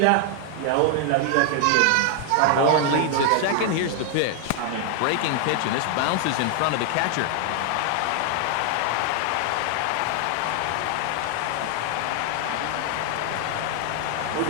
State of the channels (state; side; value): different; both; correlation 0.00